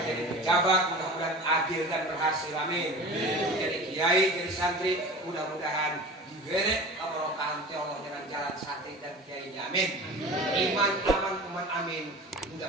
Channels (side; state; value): both; normal; correlation 0.37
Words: jadi pejabat mudah-mudahan adil dan berhasil. Amin. Jadi kiai, jadi santri mudah-mudahan diberi keberkahan ti Allah dengan jalan santri dan kiainya. Amin. Iman aman kuman amin.